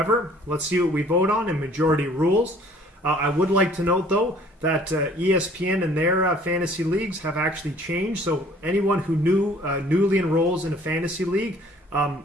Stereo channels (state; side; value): normal; both; correlation 0.55